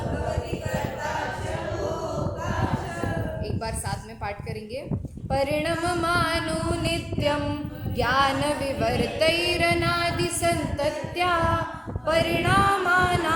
एक बार साथ में पाठ करेंगे। परिणममानो नित्यं ज्ञान विवर्तैरनादि संतत्या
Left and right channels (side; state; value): both; identical; correlation 1.00